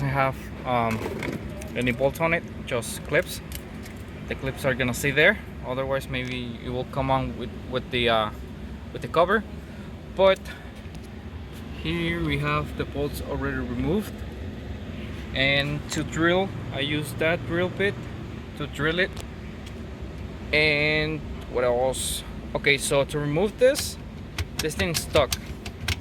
have any bolts on it, just clips. The clips are gonna stay there, otherwise maybe it will come on with the cover. But here we have the bolts already removed, and to drill I use that drill bit to drill it. And what else? Okay, so to remove this thing's stuck,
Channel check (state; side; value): identical; both; correlation 1.00